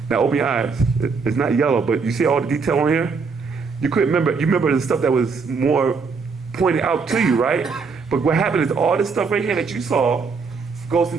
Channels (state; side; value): quieter; left; 5.0 dB